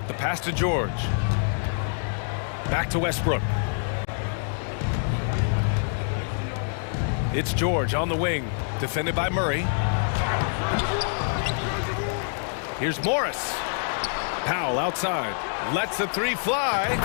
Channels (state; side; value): silent; right; digital silence